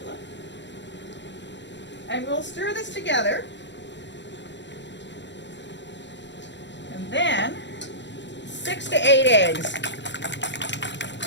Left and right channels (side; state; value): right; late; 0.52 ms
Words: And we'll stir this together. And then 6 to 8 eggs.